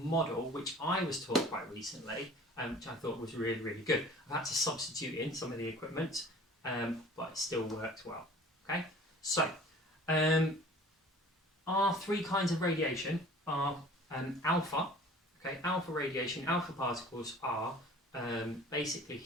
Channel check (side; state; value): both; normal; correlation 0.47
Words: which I was taught quite recently, which I thought was really, really good. I've had to substitute in some of the equipment, but it still worked well. Okay, so our three kinds of radiation are alpha. Okay, alpha radiation, alpha particles are basically